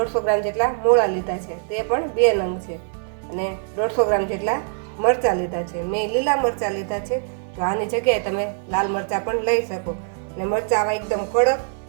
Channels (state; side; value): silent; left; 62 dB below the other